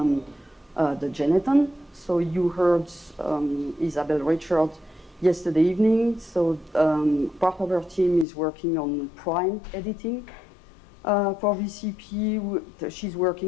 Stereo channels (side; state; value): right; drops out; at 8.2 s